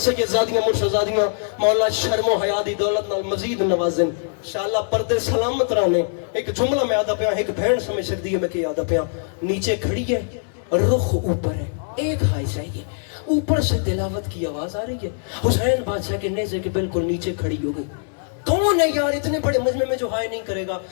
سید زادیاں مرشدزادیاں، مولا شرم و حیا دی دولت نال مزید نوازن، انشاءاللہ پردے سلامت رانے۔ ایک جملہ میں آدھا پیا، ایک بہن سمجھ سکتی ہے میں کہ آدھا پیا، نیچے کھڑی ہے، رخ اوپر ہے، ایک ہائی چاہیے، اوپر سے تلاوت کی آواز آ رہی ہے، حسین بادشاہ کے نیزے کے بالکل نیچے کھڑی ہو گئی۔ کون ہے یار اتنے بڑے مجمع میں جو ہائے نہیں کرے گا؟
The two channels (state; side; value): silent; right; 60 dB below the other